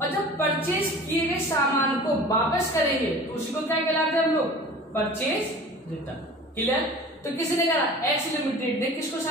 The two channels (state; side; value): normal; both; correlation 0.41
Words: जब परचेज किए गए सामान को वापस करेंगे तो उसी को क्या कहलाते हैं हम लोग, परचेज रिटर्न। क्लियर। तो किसी ने करा, एक्स लिमिटेड ने किसको